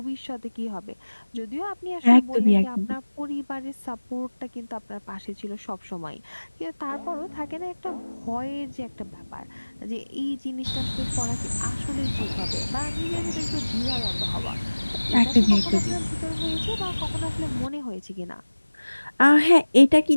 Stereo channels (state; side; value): inverted; both; correlation -1.00